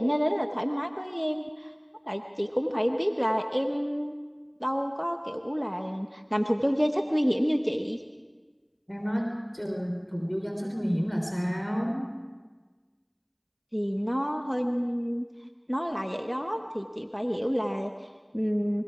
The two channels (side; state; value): both; identical; correlation 1.00